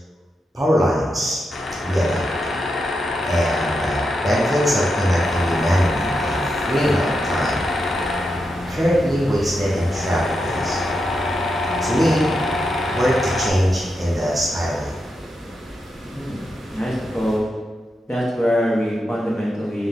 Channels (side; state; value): both; normal; correlation 0.86